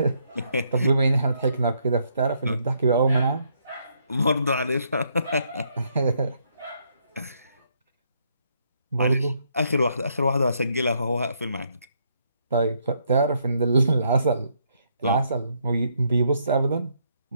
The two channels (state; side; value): inverted; both; correlation -0.73